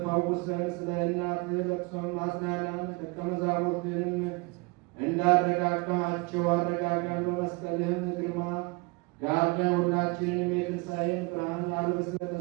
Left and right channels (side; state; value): left; quieter; 27.7 dB